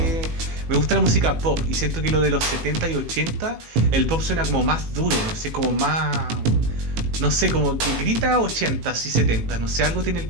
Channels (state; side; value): late; left; 18 ms